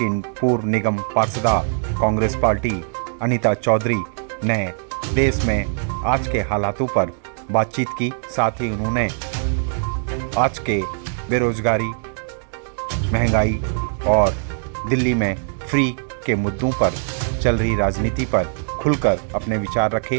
पूर्व निगम पार्षदा कांग्रेस पार्टी अनीता चौधरी ने देश में आज के हालातों पर बातचीत की। साथ ही उन्होंने आज के बेरोजगारी, महंगाई और दिल्ली में फ्री के मुद्दों पर चल रही राजनीति पर खुलकर अपने विचार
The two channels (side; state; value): left; silent; digital silence